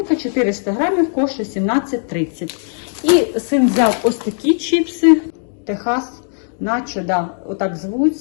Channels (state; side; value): silent; right; 67 dB below the other